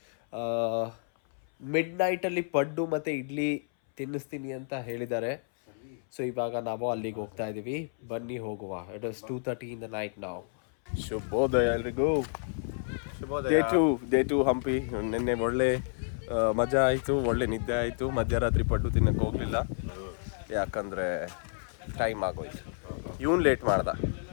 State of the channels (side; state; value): right; silent; 58 dB below the other